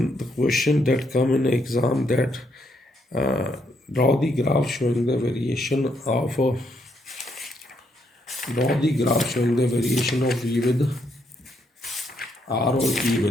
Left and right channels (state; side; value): normal; both; correlation 0.75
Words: the question that come in exam that draw the graph showing the variation of V with R or E